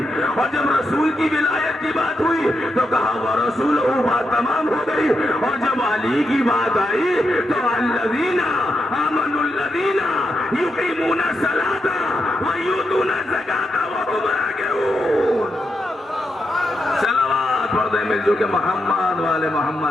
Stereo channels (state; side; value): normal; both; correlation 0.84